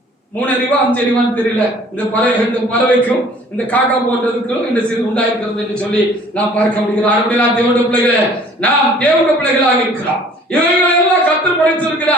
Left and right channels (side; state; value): both; normal; correlation 0.53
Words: 3 அறிவா 5 அறிவான்னு தெரியல இந்த பறவைக்கும் இந்த காக்கா போன்றதுக்கும் இந்த சிறு உண்டாயிருக்கிறது என்று சொல்லி நாம் பார்க்க முடிகிறோம். அப்படி நான் தேவனுடைய பிள்ளைகளே, நாம் தேவனுடைய பிள்ளைகளாக இருக்கிறோம். இவைகளை எல்லாம் கர்த்தர்